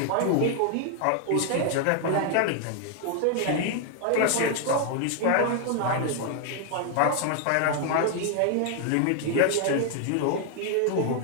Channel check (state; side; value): different; both; correlation 0.00